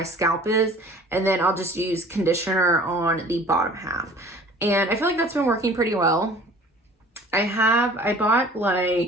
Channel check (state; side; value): normal; both; correlation 0.48